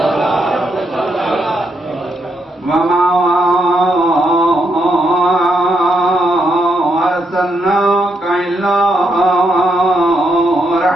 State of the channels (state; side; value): normal; both; correlation 0.78